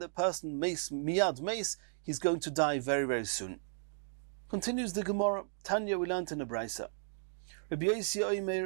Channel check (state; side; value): silent; left; digital silence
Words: person miyad meis, he's going to die very, very soon. Continues the Gemara, Tanya we learned in the Brisa. Rabbi Yossi